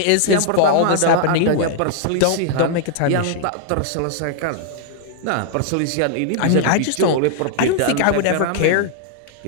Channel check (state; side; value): different; both; correlation -0.01